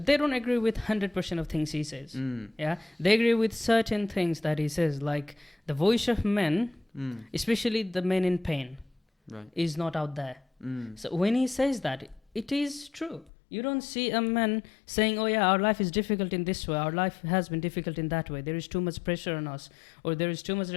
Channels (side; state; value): right; drops out; at 13.3 s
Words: they don't agree with 100% of things he says. Yeah, they agree with certain things that he says, like the voice of men, especially the men in pain, is not out there. So when he says that, it is true. You don't see a man saying, oh yeah, our life is difficult in this way, our life has been difficult in that way, there is too much pressure on us, or there is too much